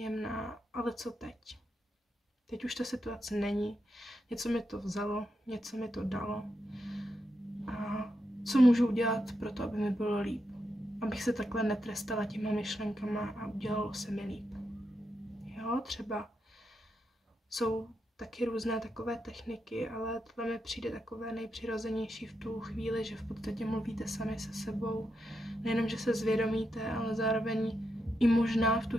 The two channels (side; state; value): both; normal; correlation 0.84